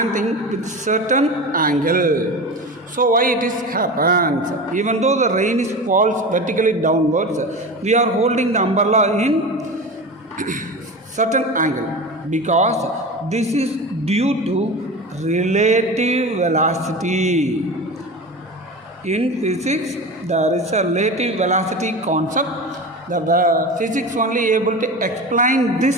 with certain angle. So why it is happens? Even though the rain is falls vertically downwards, we are holding the umbrella in certain angle because this is due to relative velocity. In physics, there is a relative velocity concept. The physics only able to explain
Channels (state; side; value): normal; both; correlation 0.28